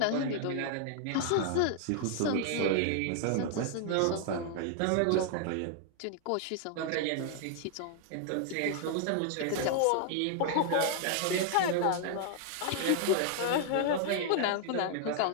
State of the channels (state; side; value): different; both; correlation 0.00